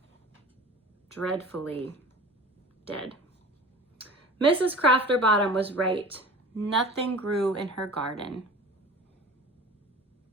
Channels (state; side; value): normal; both; correlation 0.39